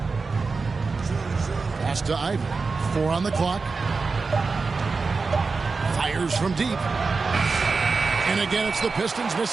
Pass to Ivy. 4 on the clock. Fires from deep. And again, it's the Pistons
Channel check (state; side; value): quieter; left; 4.4 dB